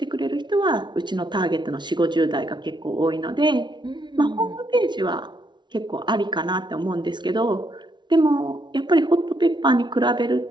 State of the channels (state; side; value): late; left; 0.22 ms